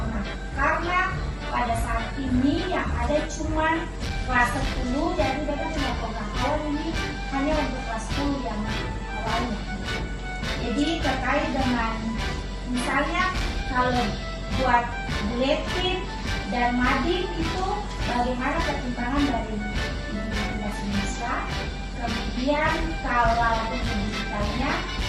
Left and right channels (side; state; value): both; identical; correlation 1.00